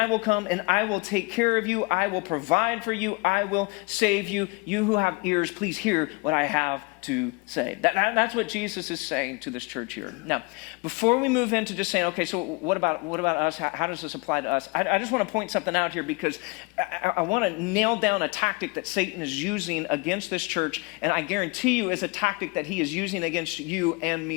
will come and I will take care of you. I will provide for you. I will save you. You who have ears, please hear what I have to say. That's what Jesus is saying to this church here. Now, before we move into just saying, okay, so what about us? How does this apply to us? I just want to point something out here because I want to nail down a tactic that Satan is using against this church, and I guarantee you is a tactic that he is using against you and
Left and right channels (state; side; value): quieter; right; 27.7 dB